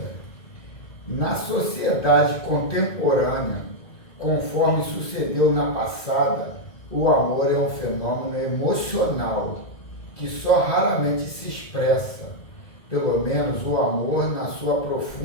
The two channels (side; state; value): right; late; 2.0 ms